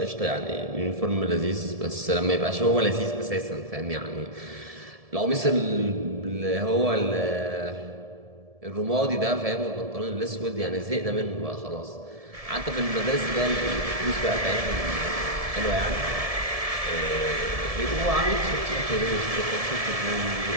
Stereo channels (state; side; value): late; left; 1.7 ms